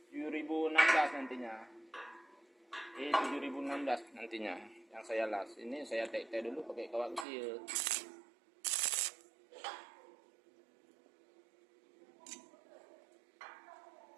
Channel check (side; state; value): left; drops out; at 7.2 s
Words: 7016 nantinya. 7016 nantinya yang saya las. Ini saya tek-tek dulu pakai kawat kecil.